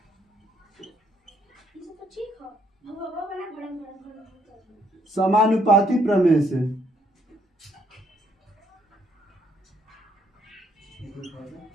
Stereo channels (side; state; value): both; normal; correlation 0.70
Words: समानुपाती प्रमेय से